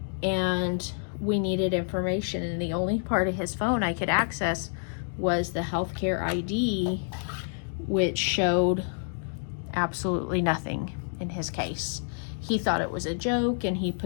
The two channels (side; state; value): right; silent; digital silence